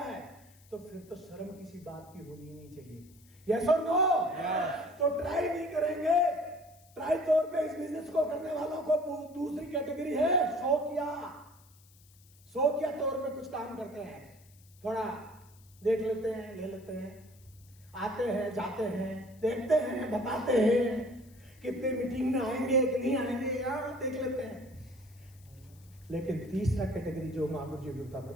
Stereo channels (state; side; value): noise; left; hiss, 27 dB below the sound